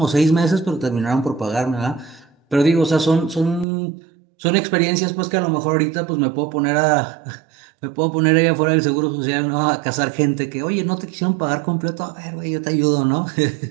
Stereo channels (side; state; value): left; drops out; at 3.7 s